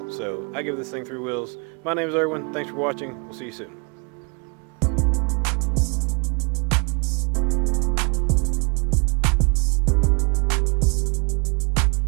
So I give this thing 3 wheels. My name is Erwin. Thanks for watching. We'll see you soon.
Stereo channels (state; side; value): quieter; left; 33.5 dB